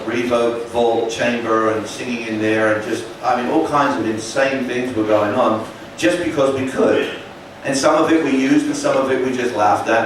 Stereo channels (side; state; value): both; identical; correlation 1.00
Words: reverb vault chamber and singing in there, and just, I mean, all kinds of insane things were going on, just because we could. And some of it we used, and some of it we just laughed